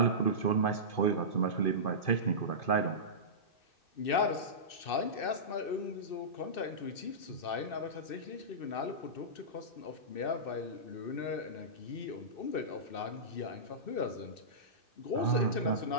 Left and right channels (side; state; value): right; late; 2.6 ms